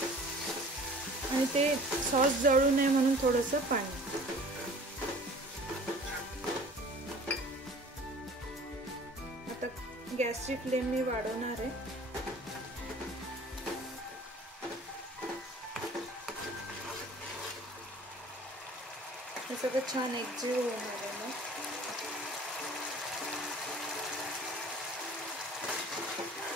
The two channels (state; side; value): normal; both; correlation 0.47